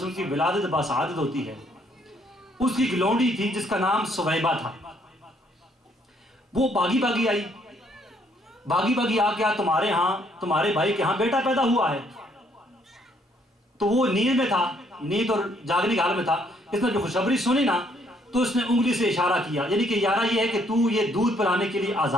کی ولادت باسعادت ہوتی ہے، اس کی ایک لونڈی تھی جس کا نام سویبہ تھا، وہ باغی آئی، باغی آ کے تمہارے ہاں، تمہارے بھائی کے ہاں بیٹا پیدا ہوا ہے، تو وہ نیند میں تھا، نیند اور جاگنے کے حال میں تھا، اس نے جو خوشخبری سنی نا تو اس نے انگلی سے اشارہ کیا، یعنی کہ یارہ یہ ہے کہ تو یہ دودھ پلانے کے لیے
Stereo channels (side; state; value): both; normal; correlation 0.68